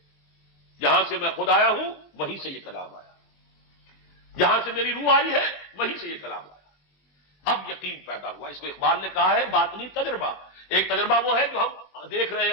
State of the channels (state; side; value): late; right; 20 ms